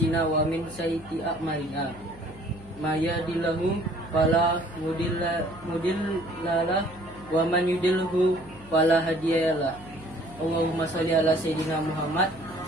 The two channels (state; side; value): noise; left; hum, 20 dB below the sound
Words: wa min sayyiati a'malina. May yahdihillahu fala mudhillalah wa man yudlilhu fala hadiyalah. Allahumma shalli ala sayyidina Muhammad